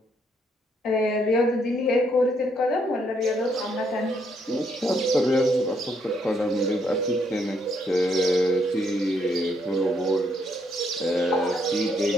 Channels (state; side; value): normal; both; correlation 0.73